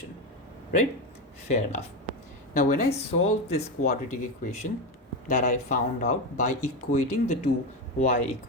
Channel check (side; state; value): both; normal; correlation 0.15